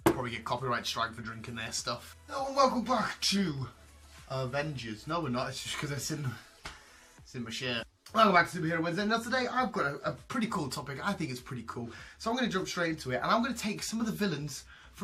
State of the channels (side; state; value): both; identical; correlation 1.00